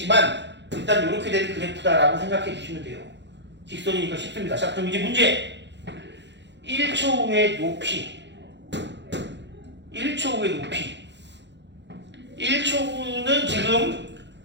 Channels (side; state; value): left; late; 0.52 ms